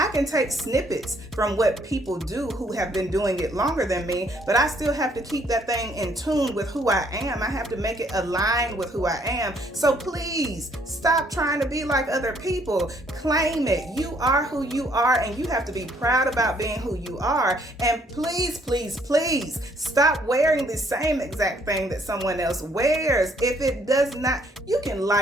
can take snippets from what people do who have been doing it longer than me, but I still have to keep that thing in tune with who I am. I have to make it align with who I am. So please stop trying to be like other people. Claim it. You are who you are, and you have to be proud about being who you are. And please, please, please stop wearing the same exact thing that someone else wears. If it does not, you can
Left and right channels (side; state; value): both; normal; correlation 0.66